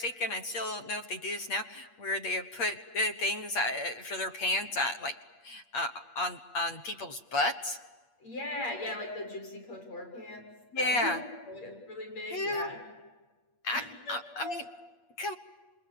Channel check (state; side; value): late; right; 8.5 ms